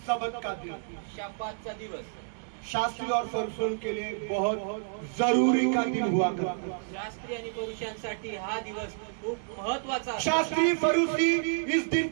शब्बत का दिन शब्बातचा दिवस शास्त्री और फरीसियों के लिए बहुत जरूरी का दिन हुआ करता। शास्त्री आणि पुरुषांसाठी हा दिवस खूप महत्वाचा असतो. शास्त्री फरीसी इस दिन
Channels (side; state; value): left; silent; digital silence